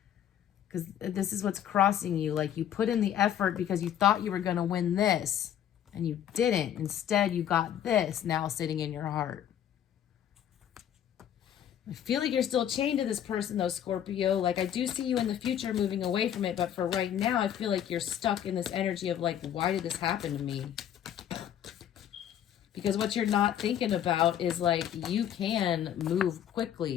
Because this is what's crossing you. Like, you put in the effort because you thought you were going to win this. And you didn't. Instead, you got this now sitting in your heart. I feel like you're still chained to this person, though, Scorpio. Like, I do see you in the future moving away from it. But for right now, I feel like you're stuck in this energy of, like, why did this happen to me? Because what you're not thinking about is, like, you can move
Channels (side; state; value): right; quieter; 10.1 dB